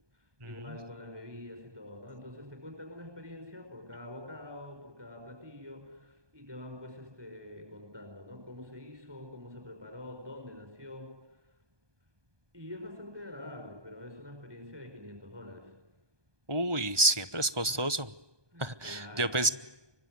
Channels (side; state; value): left; late; 1.2 ms